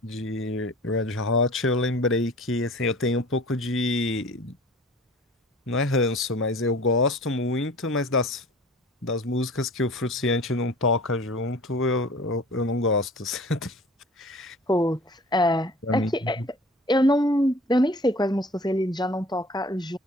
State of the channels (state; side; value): normal; both; correlation 0.44